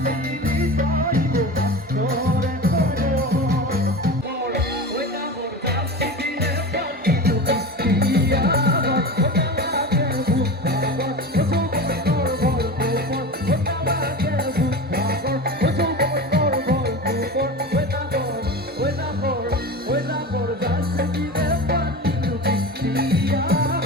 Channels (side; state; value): both; normal; correlation 0.29